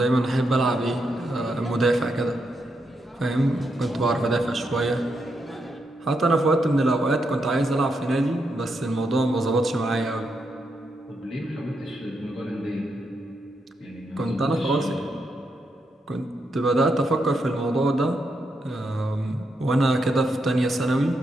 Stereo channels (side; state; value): both; normal; correlation 0.82